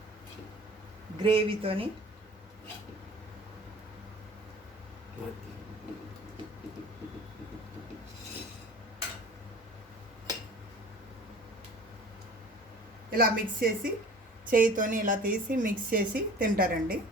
గ్రేవీతోని ఇలా మిక్స్ చేసి చేయితోని ఇలా తీసి మిక్స్ చేసి తింటారండి.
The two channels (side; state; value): both; normal; correlation 0.43